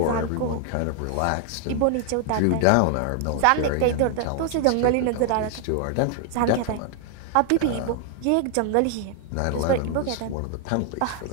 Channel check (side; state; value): both; different; correlation 0.00